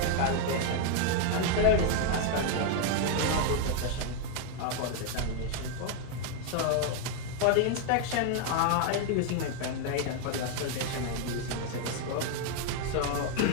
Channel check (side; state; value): both; different; correlation 0.00